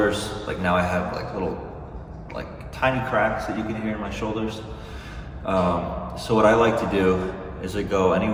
like now I have like little, like tiny cracks that you can hear in my shoulders. So what I like to do is I go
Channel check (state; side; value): identical; both; correlation 1.00